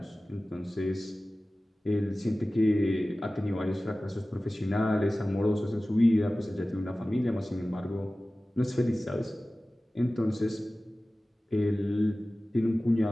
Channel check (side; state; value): both; normal; correlation 0.97